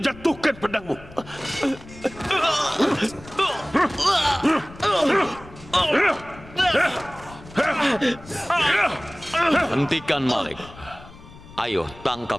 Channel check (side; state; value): left; noise; rumble, 19 dB below the sound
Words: pedangmu! Hentikan Malik. Ayo, tangkap